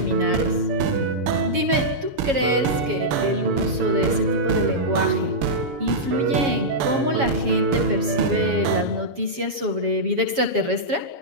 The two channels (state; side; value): late; left; 7.3 ms